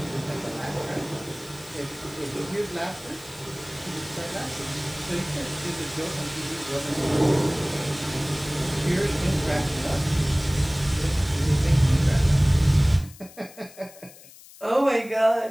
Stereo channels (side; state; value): left; noise; hiss, 21 dB below the sound